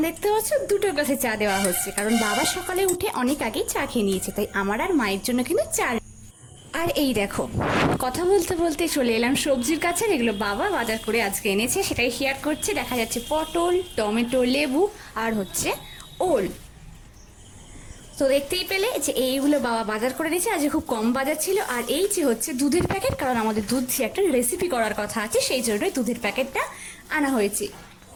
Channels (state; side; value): identical; both; correlation 1.00